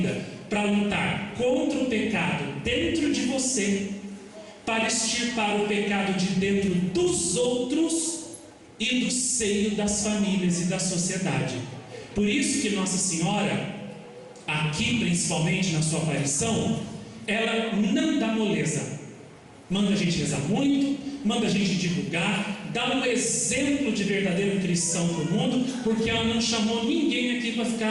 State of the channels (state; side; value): identical; both; correlation 1.00